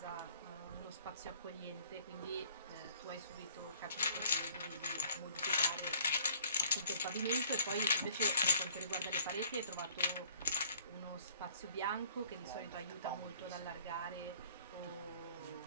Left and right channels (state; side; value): inverted; both; correlation -0.58